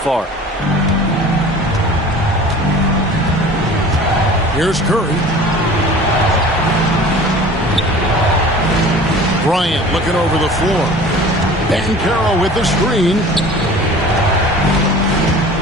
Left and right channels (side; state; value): both; normal; correlation 0.43